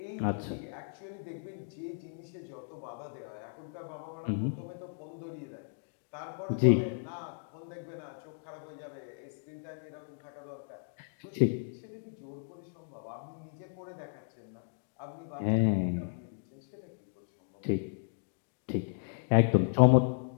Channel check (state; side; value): silent; right; digital silence